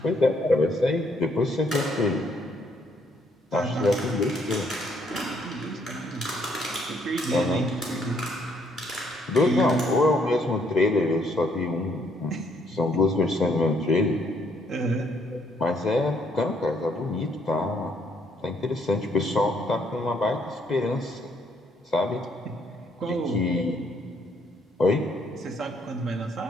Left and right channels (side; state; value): both; normal; correlation 0.69